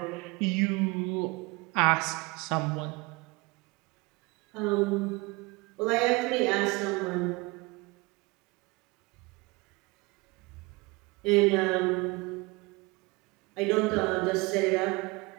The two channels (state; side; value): quieter; left; 25.4 dB